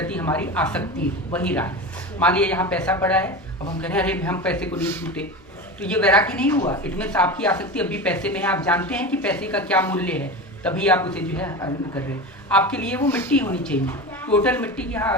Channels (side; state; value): both; normal; correlation 0.26